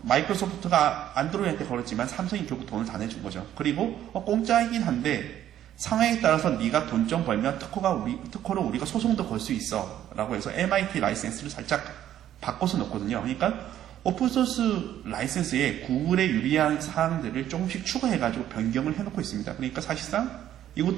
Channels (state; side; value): quieter; left; 11.5 dB